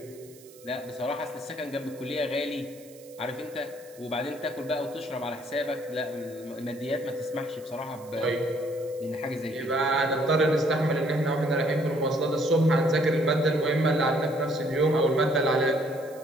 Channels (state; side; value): noise; right; hiss, 23 dB below the sound